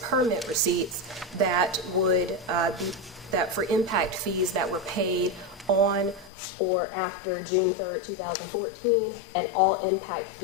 permit receipts that would that for impact fees that were paid on or after June 3rd, 2014, and all impact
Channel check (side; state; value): right; drops out; at 6.3 s